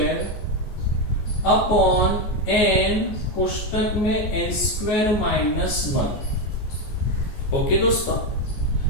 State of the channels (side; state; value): right; late; 14 ms